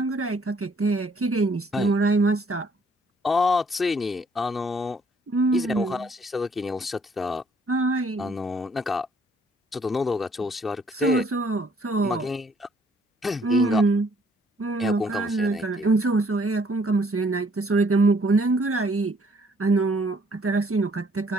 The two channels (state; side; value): normal; both; correlation 0.63